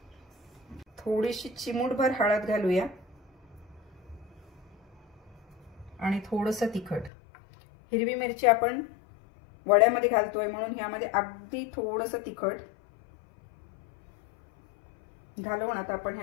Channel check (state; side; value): drops out; right; at 7.1 s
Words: थोडीशी चिमूटभर हळद घालूया आणि थोडंसं तिखट। हिरवी मिरची आपण वड्यामध्ये घालतोय म्हणून ह्यामध्ये अगदी थोडंसं तिखट घालून आता आपण